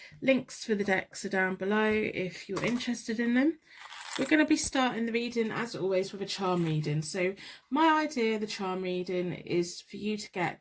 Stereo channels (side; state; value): both; identical; correlation 1.00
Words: Links for the decks are down below if you're interested in them. We're going to be starting the reading, as always, with a charm reading. So my idea of the charm reading is for you to get